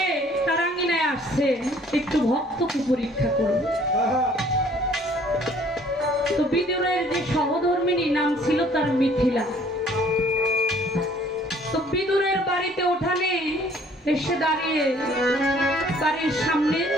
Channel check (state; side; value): normal; both; correlation 0.57